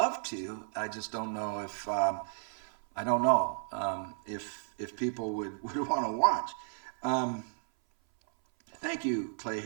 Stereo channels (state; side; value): silent; left; 55 dB below the other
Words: to. I just don't know if if people would want to watch. Thank you, Clay